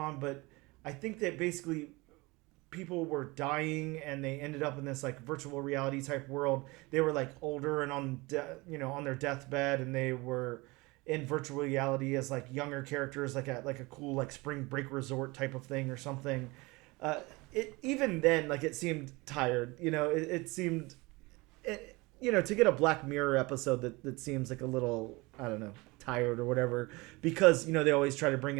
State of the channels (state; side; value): quieter; left; 24.0 dB